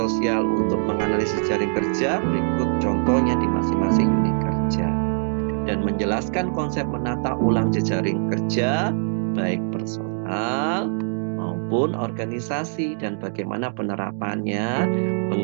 untuk menganalisis jejaring kerja, berikut contohnya di masing-masing unit kerja. Dan menjelaskan konsep menata ulang jejaring kerja baik personal maupun organisasi dan bagaimana penerapannya,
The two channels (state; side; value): silent; left; 60 dB below the other